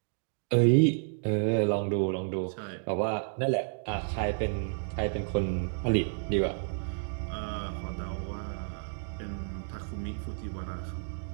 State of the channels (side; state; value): left; silent; digital silence